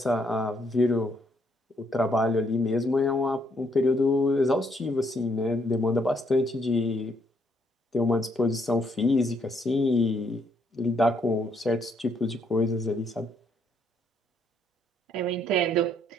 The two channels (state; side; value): normal; both; correlation 0.71